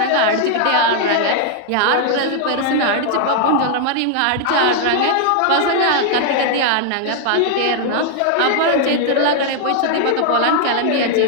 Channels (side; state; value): both; different; correlation 0.00